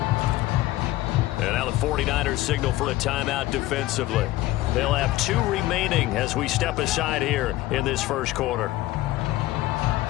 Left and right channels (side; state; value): right; quieter; 16.9 dB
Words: And now the 49ers signal for a timeout defensively. They'll have 2 remaining as we step aside here in this first quarter.